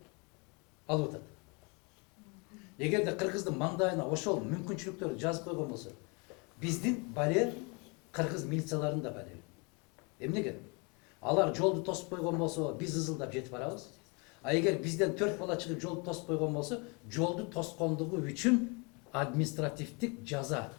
алып атат. Эгерде кыргыздын маңдайына ошол мүмкүнчүлүктөрдү жазып койгон болсо, биздин балер кыргыз милицияларынын да балери. Эмнеге? Алар жолду тосуп койгон болсо, биз ызылдап жетип барабыз. А эгер бизден 4 бала чыгып жолду тосуп койгон болсо, жолду тоскондугу үчүн административдик жаза.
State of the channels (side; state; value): right; quieter; 31.5 dB